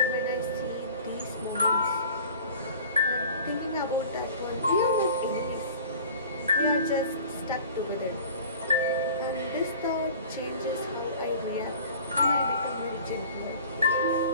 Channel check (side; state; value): both; inverted; correlation -0.44